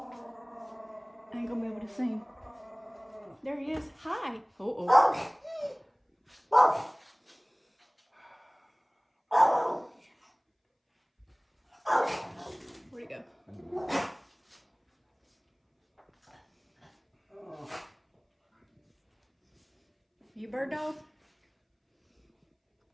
I ain't gonna be able to see him. There he is. Hi. Oh. Where'd he go? You bird dog?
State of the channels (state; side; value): identical; both; correlation 1.00